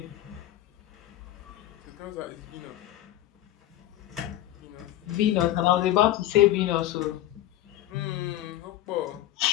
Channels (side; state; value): right; quieter; 13.9 dB